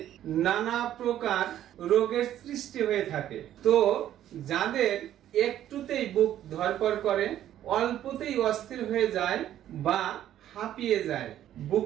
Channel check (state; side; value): quieter; left; 11.8 dB